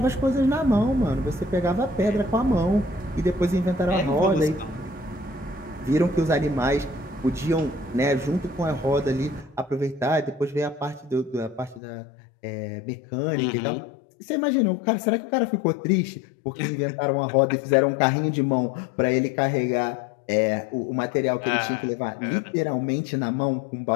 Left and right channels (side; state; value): right; drops out; at 11.8 s